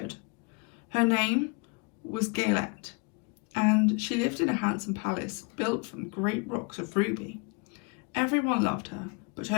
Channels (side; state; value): right; quieter; 30.7 dB